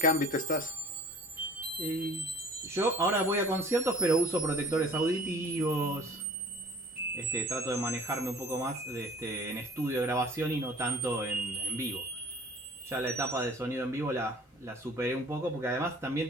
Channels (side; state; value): both; normal; correlation 0.48